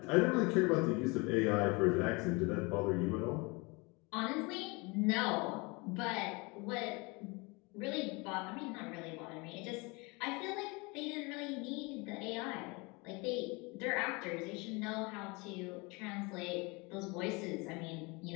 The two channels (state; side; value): quieter; right; 27.3 dB